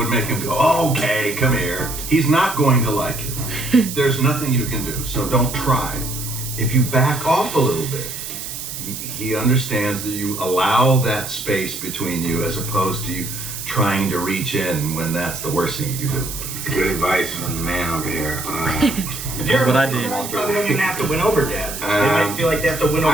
make him go, okay, come here. He's not going to like it. There's nothing you can do, so don't try. If you back off a little bit, he understands that you allow that space between you as opposed to you trying to reach in when that's the worst thing you can do. Good advice from the man over here. If you're What I you did. probably don't even have to win over dads. They might feel like they have to win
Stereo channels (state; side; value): noise; right; hiss, 8 dB below the sound